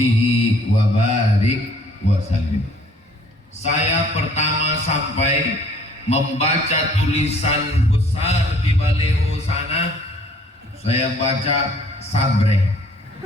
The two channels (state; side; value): normal; both; correlation 0.58